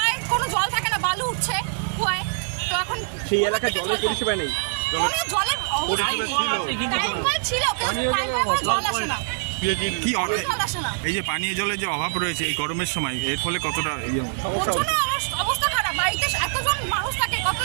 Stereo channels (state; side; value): silent; left; digital silence